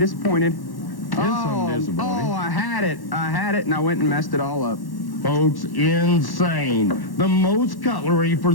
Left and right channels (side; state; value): right; late; 1.1 ms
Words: I'm disappointed. Oh, I had it, and I went and messed it all up. Folks, insane. The most cutlery for